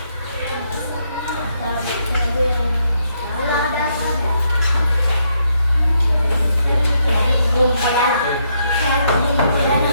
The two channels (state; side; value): inverted; both; correlation -0.76